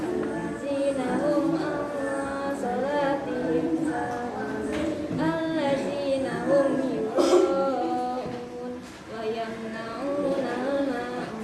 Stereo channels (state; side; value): identical; both; correlation 1.00